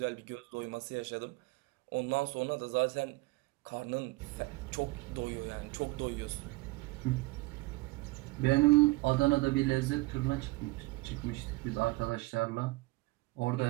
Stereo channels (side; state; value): left; quieter; 22.0 dB